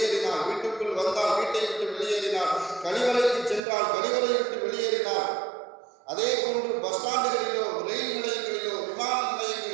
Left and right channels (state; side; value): drops out; left; at 3.6 s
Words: வீட்டுக்குள் வந்தால் வீட்டை விட்டு வெளியேறினார், கழிவறைக்கு சென்றால் கழிவறை விட்டு வெளியேறினார். அதே போன்று பஸ் ஸ்டாண்டுகளிலோ ரயில் நிலையங்களிலோ விமான